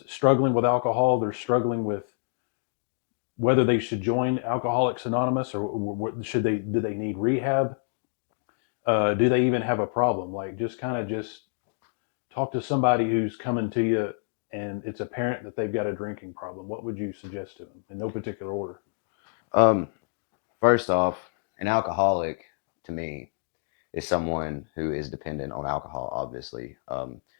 struggling with alcohol, they're struggling with whether they should join Alcoholics Anonymous or should they do they need rehab? Do they even have a problem? Like just kind of just talk to somebody who's coming to you and it's apparent that they've got a drinking problem. What would you suggest to them in no particular order? Um, First off, an alcoholic to me is someone who is dependent on alcohol, obviously.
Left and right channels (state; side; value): silent; right; digital silence